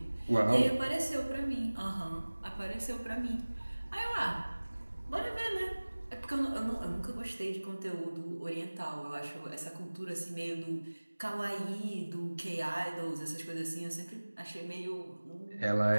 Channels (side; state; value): both; inverted; correlation -1.00